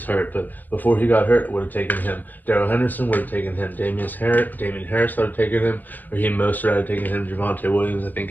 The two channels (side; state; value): right; late; 0.087 ms